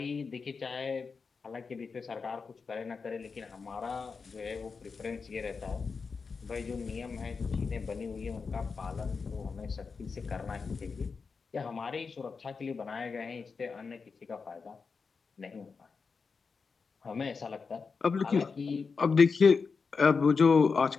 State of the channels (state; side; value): quieter; right; 5.0 dB